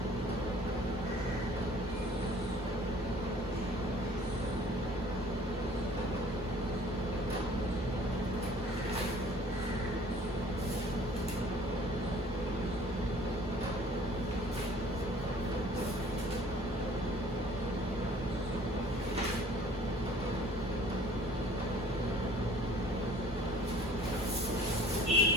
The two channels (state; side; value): normal; both; correlation 0.51